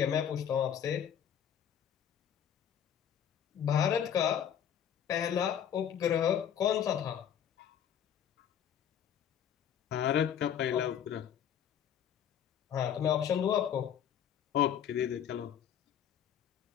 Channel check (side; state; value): right; quieter; 9.1 dB